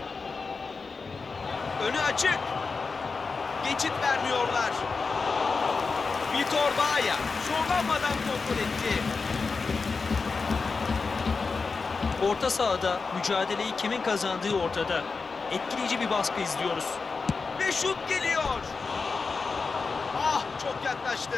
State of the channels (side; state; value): right; quieter; 4.5 dB